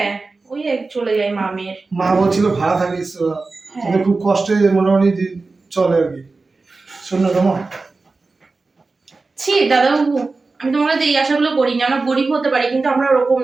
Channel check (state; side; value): quieter; left; 3.8 dB